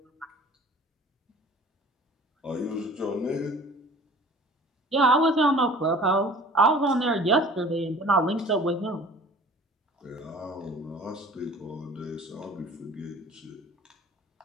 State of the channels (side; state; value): both; normal; correlation 0.46